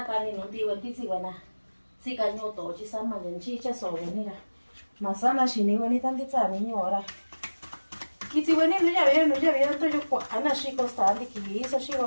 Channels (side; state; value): both; inverted; correlation -1.00